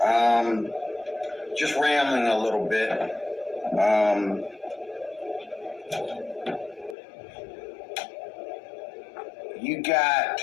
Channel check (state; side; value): drops out; right; at 7.0 s